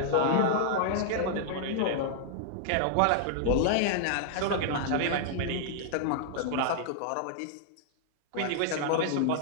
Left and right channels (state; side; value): different; both; correlation -0.01